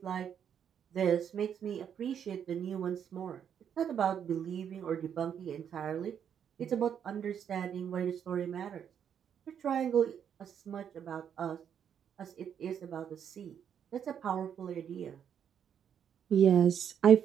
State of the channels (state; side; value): quieter; left; 8.4 dB